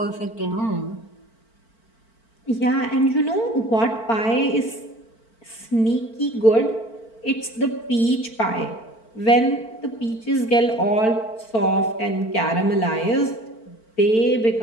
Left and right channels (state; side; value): late; right; 4.5 ms